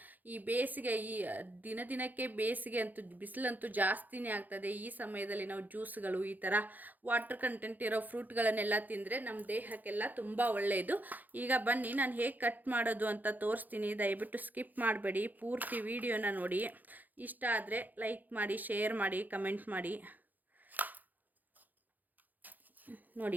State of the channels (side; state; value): left; late; 0.084 ms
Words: ಈ ಬೇಸಿಗೆ ದಿನಕ್ಕೆ ಬೇಸಿಗೆ ಅಂತೂ ಬಿಸಿಲಂತೂ ಜಾಸ್ತಿನೇ ಆಗ್ತದೆ. ಈ ಸಮಯದಲ್ಲಿ ನಾವು ಜ್ಯೂಸ್ಗಳು ಈ ಥರ ವಾಟರ್ ಕಂಟೆಂಟ್ ಇರೋ ಫ್ರೂಟ್ಗಳನ್ನೆಲ್ಲ ತಿಂದರೆ ನಮ್ಮ ದೇಹಕ್ಕೆಲ್ಲ ತುಂಬ ಒಳ್ಳೆಯದು. ಈಗ ಬನ್ನಿ ನಾನು ಹೇಗೆ ಕಟ್ ಮಾಡೋದು ಅಂತ ತೋರಿಸ್ತೀನಿ. ದಯವಿಟ್ಟು ಸ್ಕಿಪ್ ಮಾಡಬೇಡಿ, ಪೂರ್ತಿ ವಿಡಿಯೋನ ನೋಡಿ. ಇಷ್ಟ ಆದರೆ ಲೈಕ್ ಮಾಡಿ, ಶೇರ್ ಮಾಡಿ, ಕಮೆಂಟ್ ಮಾಡಿ.